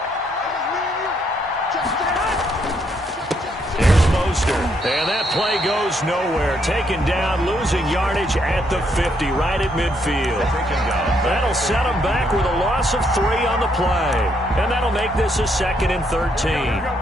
And that play goes nowhere. Taken down, losing yardage at the 50, right at midfield. That'll set them back with a loss of 3 on the play. And that'll make this a 2nd and 13.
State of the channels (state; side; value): normal; both; correlation 0.73